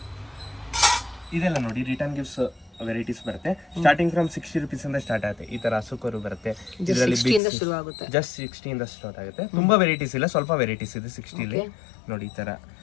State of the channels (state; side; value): drops out; right; at 7.4 s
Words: ಇದೆಲ್ಲ ನೋಡಿ ರಿಟರ್ನ್ ಗಿಫ್ಟ್ಸ್ ವೆರೈಟೀಸ್ ಬರುತ್ತೆ. ಸ್ಟಾರ್ಟಿಂಗ್ ಫ್ರಮ್ 60 rupees ಇಂದ ಸ್ಟಾರ್ಟ್ ಆಗುತ್ತೆ. ಈ ತರ ಹಸುಕರು ಬರುತ್ತೆ, ಇದರಲ್ಲಿ ಶುರು ಆಗುತ್ತೆ. ಜಸ್ಟ್ 60 ಇಂದ ಸ್ಟಾರ್ಟ್ ಆಗುತ್ತೆ. ತುಂಬಾ ವೆರೈಟೀಸ್ ಇಲ್ಲ, ಸ್ವಲ್ಪ ವೆರೈಟೀಸ್ ಇದೆ 60 ಅಲ್ಲಿ ನೋಡಿ. ಈ ತರ